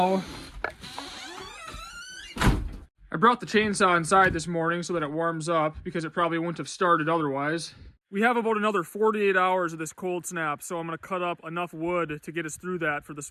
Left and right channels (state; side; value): identical; both; correlation 1.00